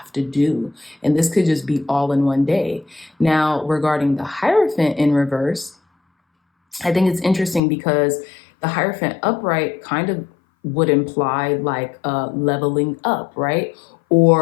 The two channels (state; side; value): drops out; right; at 7.6 s